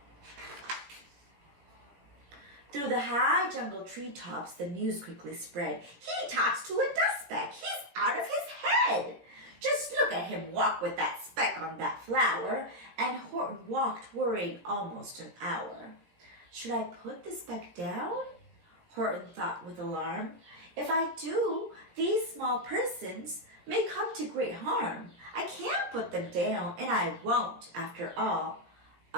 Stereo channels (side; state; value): left; late; 17 ms